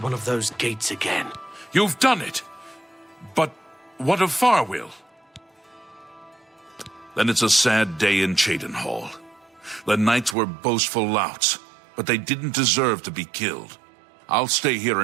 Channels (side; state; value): left; drops out; at 10.4 s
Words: of those gates again. You've done it. But what of Farwell? Then it's a sad day in Cheydinhall. The knights were boastful louts, but they didn't deserve to be killed. I'll stay here